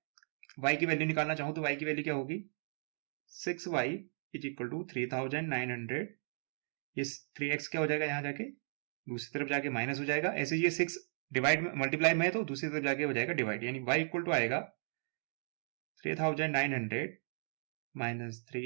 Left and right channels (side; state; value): left; silent; digital silence